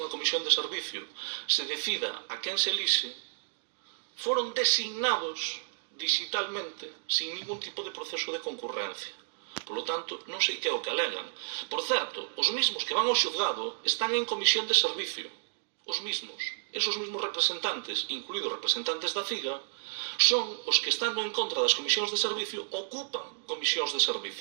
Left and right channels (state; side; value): silent; left; digital silence